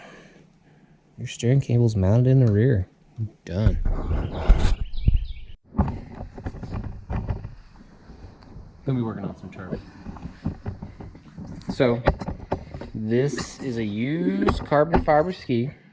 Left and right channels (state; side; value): identical; both; correlation 1.00